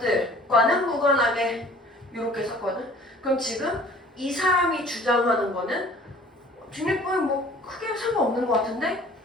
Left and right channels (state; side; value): normal; both; correlation 0.50